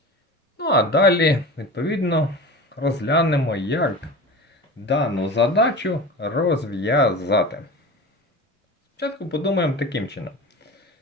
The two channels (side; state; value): both; normal; correlation 0.32